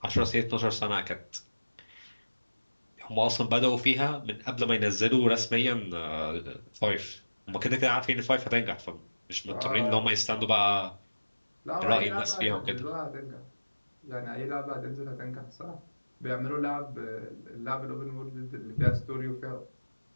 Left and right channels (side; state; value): both; inverted; correlation -1.00